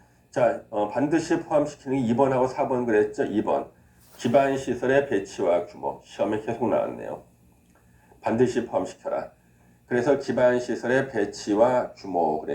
자, 반드시 포함시키는 게 2번하고 4번 그랬죠? 2번. 기반 시설의 배치와 규모. 시험에 계속 나왔네요. 반드시 포함시켜라. 그래서 기반 시설의 배치와 규모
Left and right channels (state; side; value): identical; both; correlation 1.00